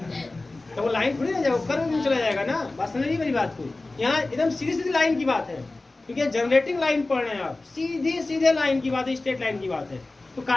थोड़ी ना जाएगा, कर्व में चला जाएगा ना। बात समझ नहीं मेरी बात को, यहाँ एकदम सीधी सीधी लाइन की बात है, क्योंकि जनरेटिंग लाइन पढ़ रहे हैं आप, सीधे सीधे लाइन की बात है, स्ट्रेट लाइन की बात है, तो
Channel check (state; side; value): quieter; right; 3.1 dB